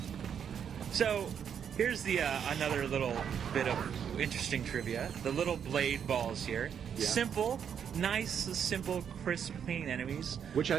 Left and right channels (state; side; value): quieter; left; 8.0 dB